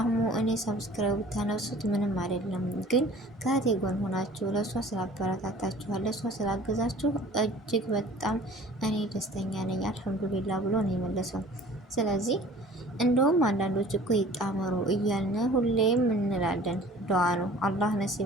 እኔ ሰብስክራይብ ብታነሱት ምንም አይደለም፣ ግን ከእህቴ ጎን ሆናችሁ ለእሷ ስላበረታታችኋል ለእሷ ስላገዛችሁ እጅግ በጣም እኔ ደስተኛ ነኝ አልሐምዱሊላ ብሎ ነው የመለሰው። ስለዚህ እንደውም አንዳንዶች እኮ ይጣመሩ እያልን ሁሌም እንላለን። ዱዓ ነው። አላህ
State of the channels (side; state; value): both; normal; correlation 0.47